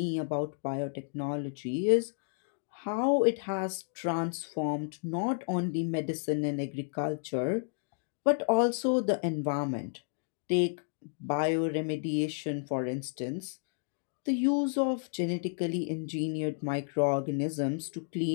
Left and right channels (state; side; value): silent; right; digital silence